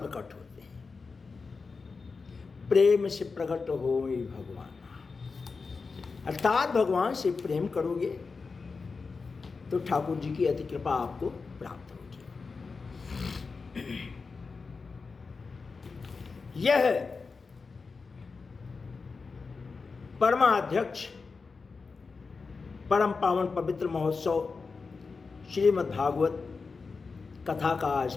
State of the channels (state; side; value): quieter; right; 4.6 dB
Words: होते हैं? प्रेम से प्रकट हो भगवान, अर्थात भगवान से प्रेम करोगे तो ठाकुर जी की अति कृपा आपको प्राप्त होगी। यह परमाध्यक्ष परम पावन पवित्र महोत्सव श्रीमद् भागवत कथा का आज